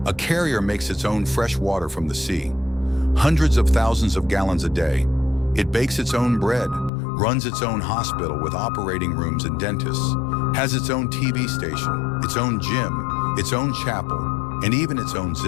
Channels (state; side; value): drops out; right; at 6.9 s